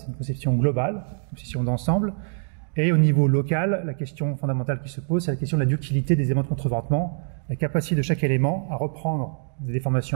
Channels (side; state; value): left; silent; digital silence